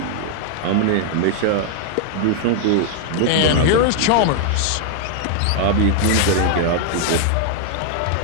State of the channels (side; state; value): both; different; correlation 0.00